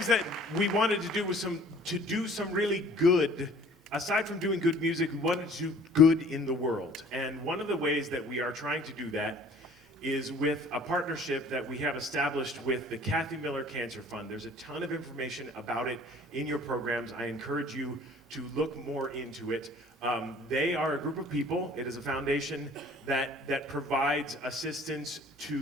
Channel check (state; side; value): normal; both; correlation 0.52